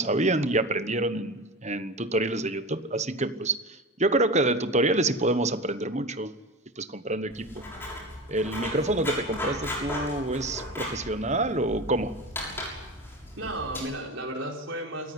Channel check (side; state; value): both; normal; correlation 0.28